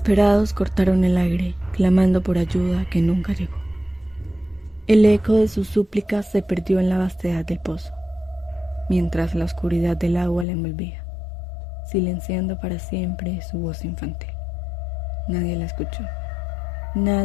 cortaron el aire, clamando por ayuda que nunca llegó. El eco de sus súplicas se perdió en la vastedad del pozo, mientras la oscuridad del agua la envolvía, silenciando para siempre su voz infantil. Nadie la escuchó.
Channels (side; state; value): right; drops out; at 10.5 s